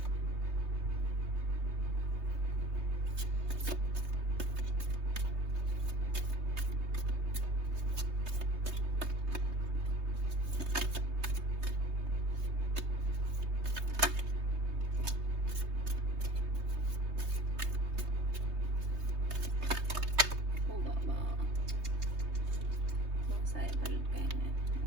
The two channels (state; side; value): late; left; 3.2 ms